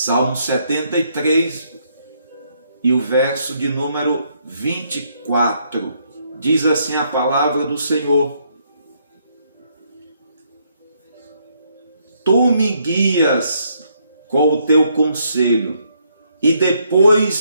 73 e o verso de número 24. Diz assim a palavra do Senhor: Tu me guias com o teu conselho e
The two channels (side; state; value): both; inverted; correlation -0.73